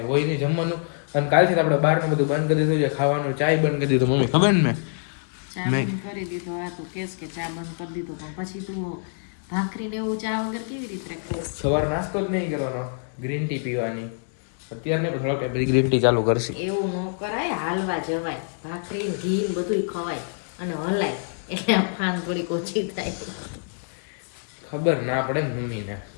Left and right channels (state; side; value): silent; right; digital silence